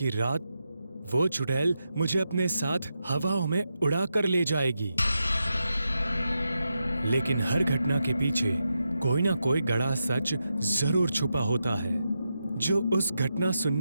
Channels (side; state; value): both; inverted; correlation -0.87